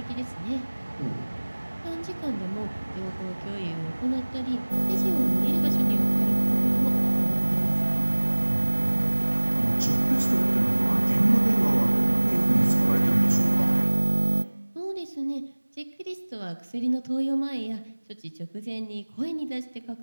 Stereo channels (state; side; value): inverted; both; correlation -1.00